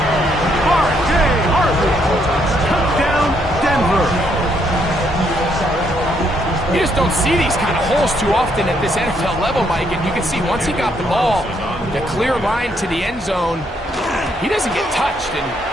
R.J. Harvey. Touchdown, Denver. You just don't see these kind of holes too often at this NFL level, Mike. And you can see once he got the ball, the clear line to the end zone, he doesn't get touched. And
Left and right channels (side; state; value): both; normal; correlation 0.73